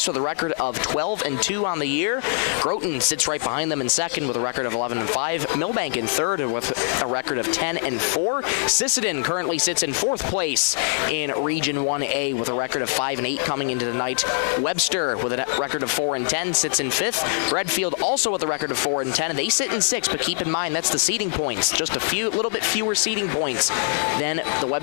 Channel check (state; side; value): silent; right; digital silence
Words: with a record of 12-2 on the year. Groton sits right behind them in second with a record of 11-5. Millbank in third with a record of 10-4. Sisseton currently sits in fourth place in Region 1A with a record of 5-8 coming into the night. Webster with a record of 4-10 sits in fifth. Redfield also with a record of 4-10, and they sit in sixth, but keep in mind that's the seeding points. Just a little bit fewer seeding points than the